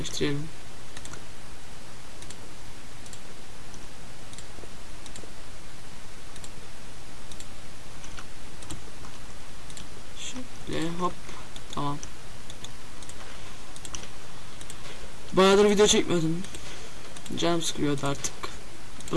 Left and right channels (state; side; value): identical; both; correlation 1.00